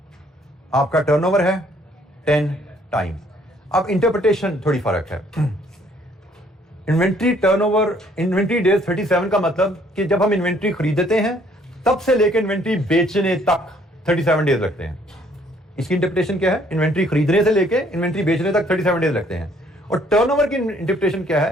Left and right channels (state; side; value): normal; both; correlation 0.63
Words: आपका टर्नओवर है 10 टाइम्स। अब इंटरप्रिटेशन थोड़ी फर्क है। इन्वेंट्री टर्नओवर, इन्वेंट्री डेज 37 का मतलब कि जब हम इन्वेंट्री खरीदते हैं तब से लेकर इन्वेंट्री बेचने तक 37 डेज लगते हैं। इसकी इंटरप्रिटेशन क्या है? इन्वेंट्री खरीदने से लेकर इन्वेंट्री बेचने तक 37 डेज लगते हैं। और टर्नओवर की इंटरप्रिटेशन क्या